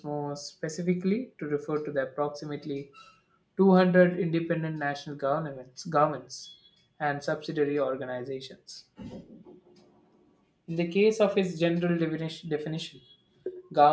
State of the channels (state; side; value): identical; both; correlation 1.00